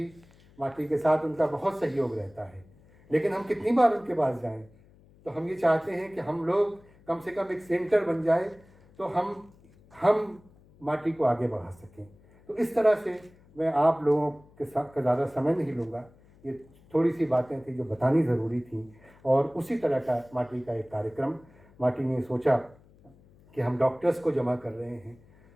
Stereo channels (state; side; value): noise; left; hum, 27 dB below the sound